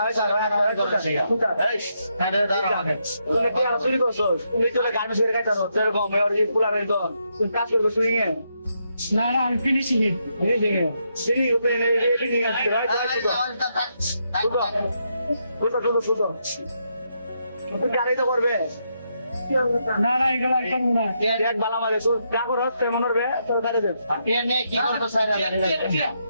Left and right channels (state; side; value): inverted; both; correlation -0.80